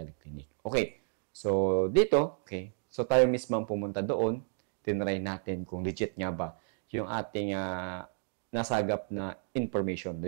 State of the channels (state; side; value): silent; left; digital silence